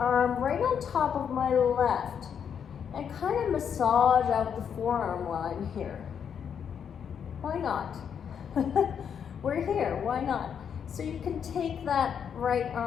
right on top of my left and kind of massage out the forearm line here. Why not? We're here, why not? So you can take that right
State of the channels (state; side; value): quieter; right; 7.7 dB